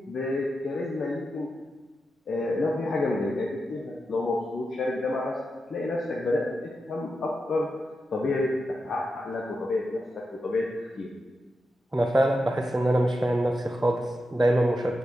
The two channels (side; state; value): both; normal; correlation 0.88